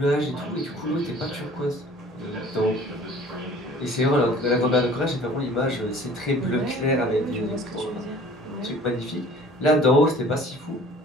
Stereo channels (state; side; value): normal; both; correlation 0.49